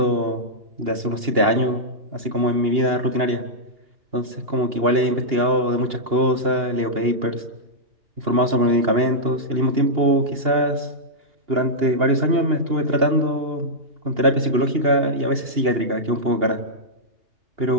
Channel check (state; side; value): late; left; 2.8 ms